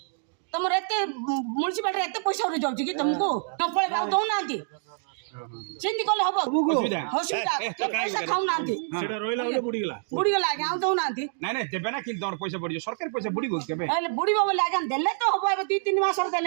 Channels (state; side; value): silent; left; digital silence